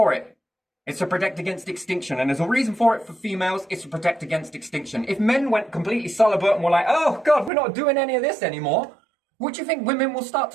it. It's to protect against extinction. And there's a reason for it for females. It's to protect against extinction. If men went completely celibate and were like, oh God, we're not doing any of this anymore, what do you think women will start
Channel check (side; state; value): left; drops out; at 7.5 s